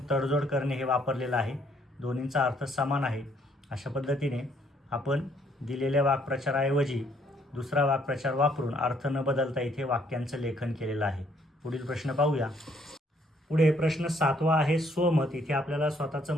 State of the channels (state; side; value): normal; both; correlation 0.67